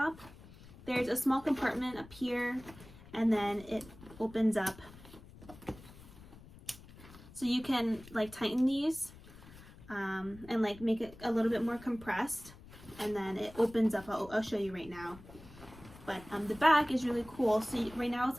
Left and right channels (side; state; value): left; noise; rumble, 19 dB below the sound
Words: There's a small compartment up here and then it opens up, so you can like tighten these and like make it a little bit more compressed, and then it opens up. I'll show you right now. But the back is really cool. So right now it's